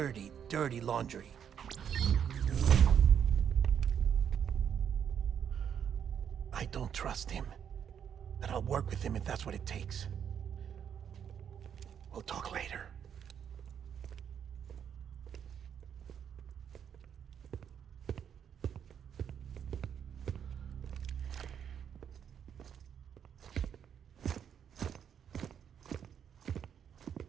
dirty laundry. I don't trust him, but I'll work with him if that's what it takes. We'll talk later.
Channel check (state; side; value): quieter; left; 8.3 dB